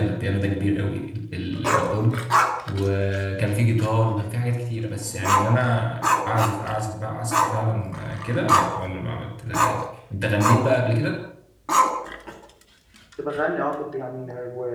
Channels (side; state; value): both; identical; correlation 1.00